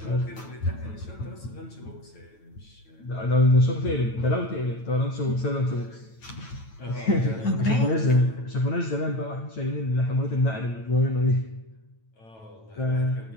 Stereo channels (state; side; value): late; right; 9.1 ms